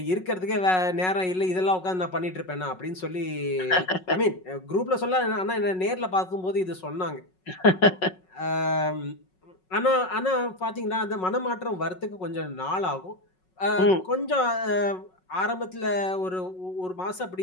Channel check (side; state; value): right; late; 5.4 ms